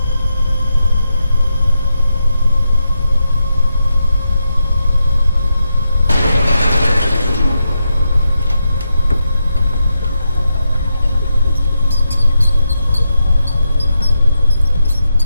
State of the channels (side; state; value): both; inverted; correlation -0.85